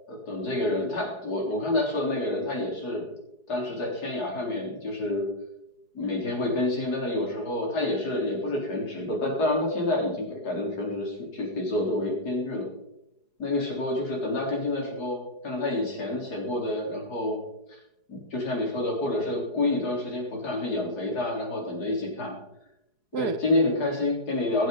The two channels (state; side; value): late; right; 4.8 ms